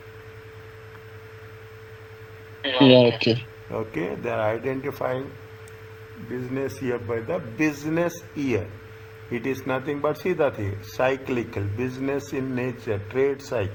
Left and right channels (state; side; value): identical; both; correlation 1.00